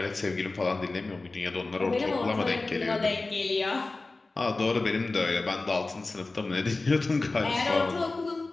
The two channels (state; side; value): quieter; right; 3.4 dB